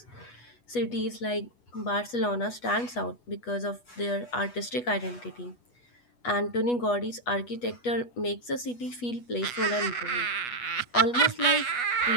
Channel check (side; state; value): right; late; 8.2 ms